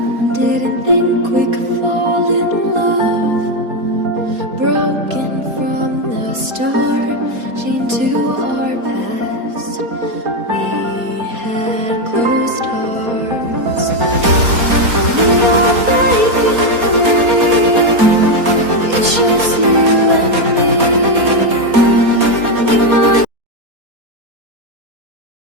didn't think we could fall in love. Broken from the start, chained to our past.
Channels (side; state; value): left; late; 4.2 ms